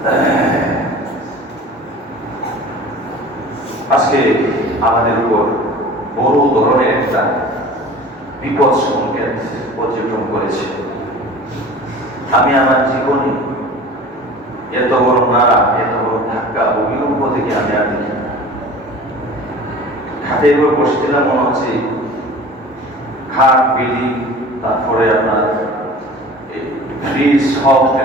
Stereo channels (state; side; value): normal; both; correlation 0.41